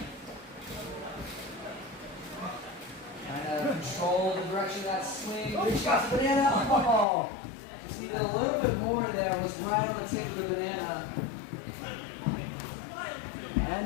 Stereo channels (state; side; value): drops out; right; at 7.1 s